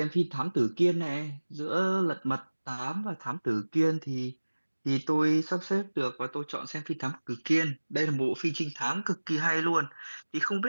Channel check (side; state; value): both; inverted; correlation -1.00